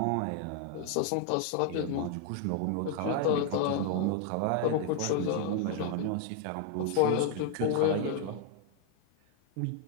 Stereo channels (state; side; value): different; both; correlation 0.00